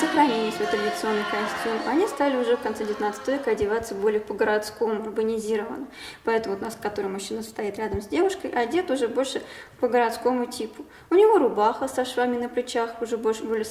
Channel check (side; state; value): both; identical; correlation 1.00